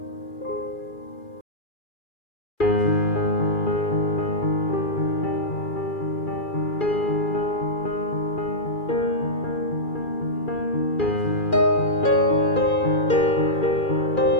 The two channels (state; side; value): late; right; 2.4 ms